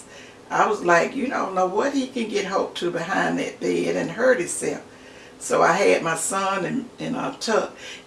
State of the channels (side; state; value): both; identical; correlation 1.00